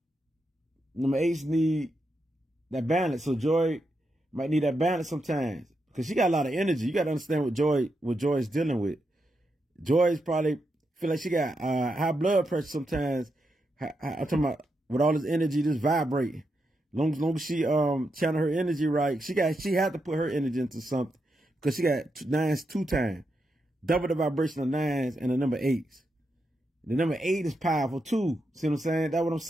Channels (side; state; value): both; normal; correlation 0.84